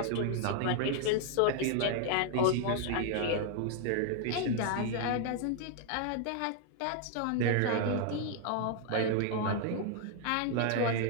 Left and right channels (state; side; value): different; both; correlation 0.00